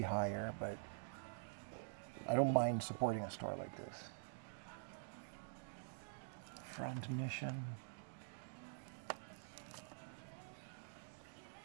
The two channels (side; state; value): left; silent; digital silence